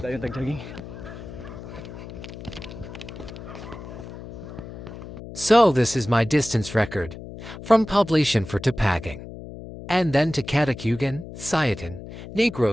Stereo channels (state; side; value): noise; left; hum, 12 dB below the sound